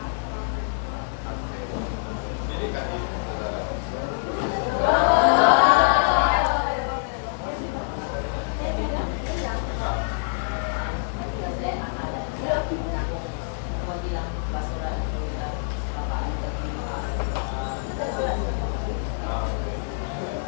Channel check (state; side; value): silent; right; digital silence